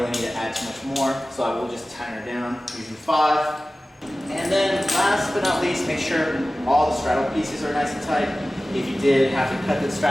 need to add too much more. So I will just tighten her down using 5. And then last but not least, make sure all the straddle pieces are nice and tight. If you did have to cut the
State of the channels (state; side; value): normal; both; correlation 0.96